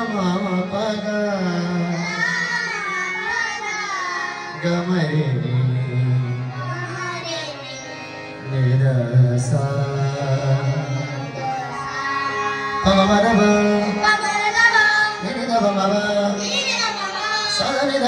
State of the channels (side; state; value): both; identical; correlation 1.00